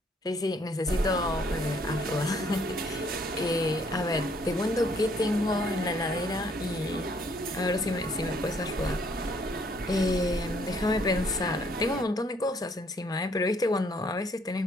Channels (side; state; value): both; normal; correlation 0.65